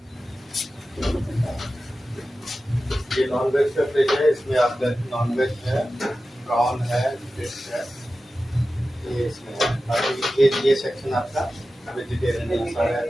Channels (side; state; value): both; normal; correlation 0.94